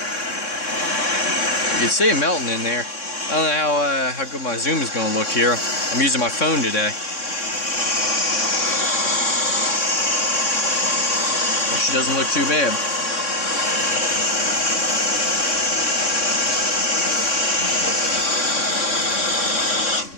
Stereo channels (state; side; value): late; right; 3.6 ms